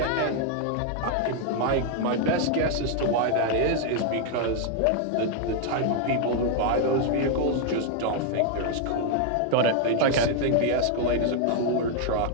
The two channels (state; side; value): different; both; correlation 0.00